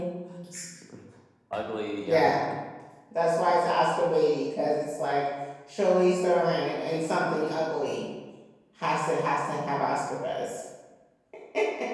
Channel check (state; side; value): identical; both; correlation 1.00